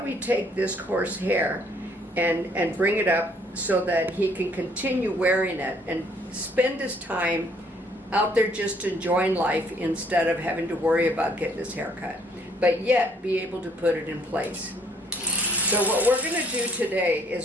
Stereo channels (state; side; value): normal; both; correlation 0.63